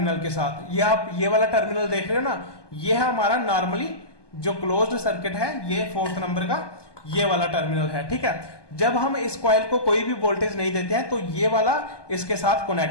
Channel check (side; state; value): right; late; 1.2 ms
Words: के साथ। ये आप ये वाला टर्मिनल देख रहे हो ना, ये है हमारा नॉर्मली जो क्लोज्ड सर्किट है, ये 4th नंबर का ये वाला टर्मिनल है, ठीक है। जब हम इस कॉइल को कोई भी वोल्टेज नहीं देते हैं तो ये वाला इसके साथ